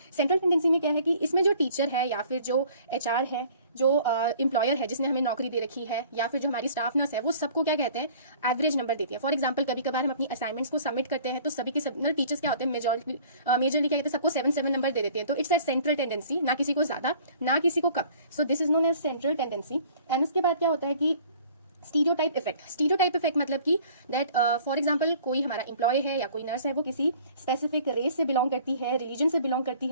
सेंट्रल टेंडेंसी में क्या है कि इसमें जो टीचर है या फिर जो एचआर है, जो एम्प्लॉयर है जिसने हमें नौकरी दे रखी है, या फिर जो हमारी स्टाफ नर्स है, वो सबको क्या कहते हैं, एवरेज नंबर देती है। फॉर एग्जांपल कभी कभार हम अपनी असाइनमेंट्स को सबमिट करते हैं तो सभी के सब टीचर्स क्या होते हैं, मेजरली क्या कहते हैं, सबको 7 नंबर दे देते हैं। तो इट्स अ सेंट्रल टेंडेंसी, ना किसी को ज्यादा ना किसी को कम। So this is known as central tendency. And उसके बाद क्या होता है कि स्टीरियोटाइप इफेक्ट। स्टीरियोटाइप इफेक्ट मतलब कि दैट फॉर एग्जांपल कोई हमारा एम्प्लॉय है या कोई नर्स है, वो किसी स्पेसिफिक रेस से बिलोंग करती है, रिलीजन से बिलोंग करती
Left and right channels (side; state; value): both; inverted; correlation -0.52